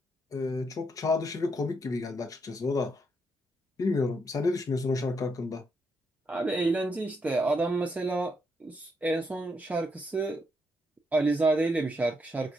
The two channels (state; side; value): normal; both; correlation 0.78